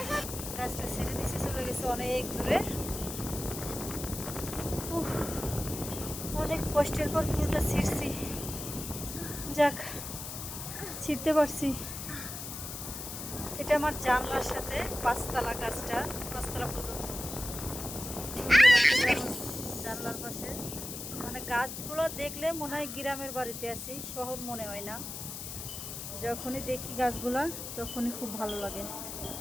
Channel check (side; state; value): left; noise; hiss, 7 dB below the sound